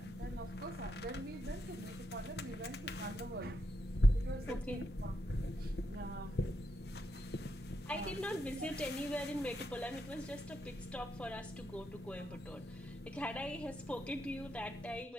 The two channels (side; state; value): both; normal; correlation 0.82